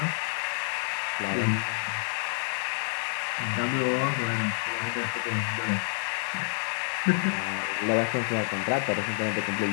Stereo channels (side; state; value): right; silent; 59 dB below the other